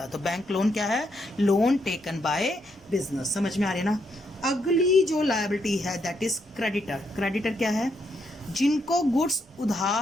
तो बैंक लोन क्या है, लोन टेकन बाय बिजनेस। समझ में आ रही है ना। अगली जो लायबिलिटी है दैट इज क्रेडिटर। क्रेडिटर क्या है, जिनको गुड्स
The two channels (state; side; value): normal; both; correlation 0.77